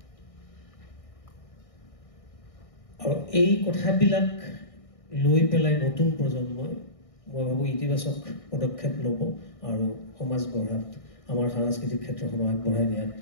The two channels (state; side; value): late; right; 1.6 ms